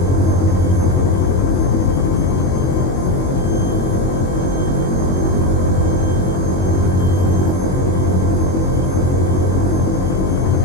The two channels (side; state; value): right; late; 22 ms